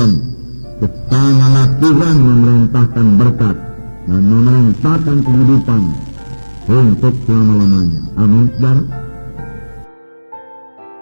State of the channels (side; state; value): both; inverted; correlation -1.00